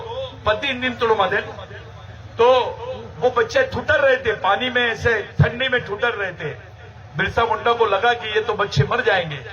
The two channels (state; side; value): identical; both; correlation 1.00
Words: पद्दी इन दिन तुड़ो मदन, तो वो बच्चे ठुटर रहे थे पानी में, ऐसे ठंडी में ठुटर रहे थे। बिरसा मुंडा को लगा कि ये तो बच्चे मर जाएंगे,